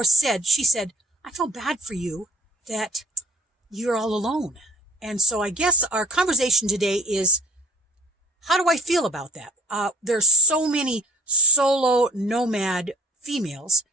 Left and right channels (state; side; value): normal; both; correlation 0.51